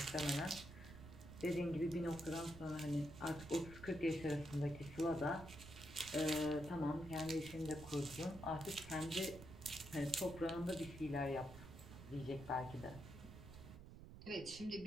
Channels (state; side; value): noise; right; rumble, 14 dB below the sound